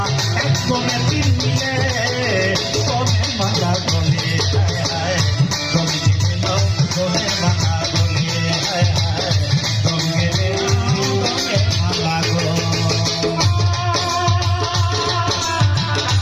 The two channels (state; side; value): identical; both; correlation 1.00